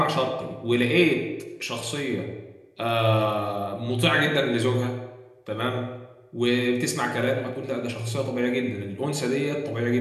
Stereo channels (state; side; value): identical; both; correlation 1.00